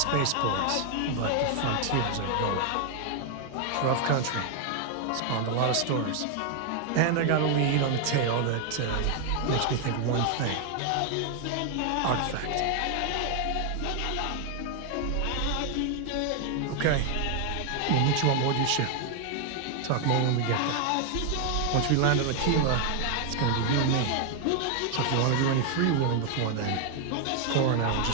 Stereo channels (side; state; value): both; different; correlation 0.00